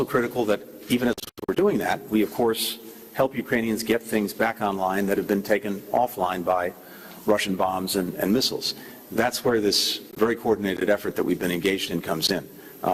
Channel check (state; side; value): identical; both; correlation 1.00